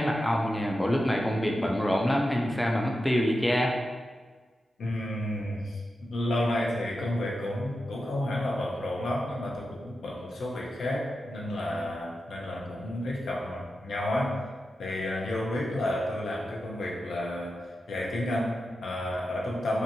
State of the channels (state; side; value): normal; both; correlation 0.90